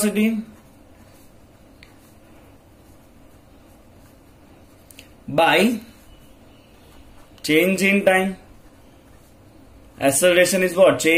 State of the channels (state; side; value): identical; both; correlation 1.00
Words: by change in time. Acceleration is what?